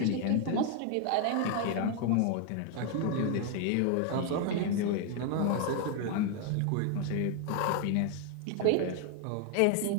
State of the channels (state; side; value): different; both; correlation 0.01